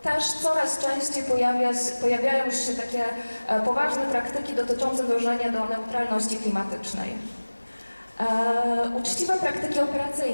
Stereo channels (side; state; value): both; inverted; correlation -1.00